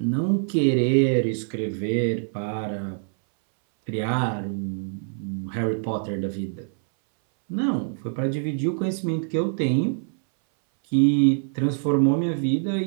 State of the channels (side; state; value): left; silent; 62 dB below the other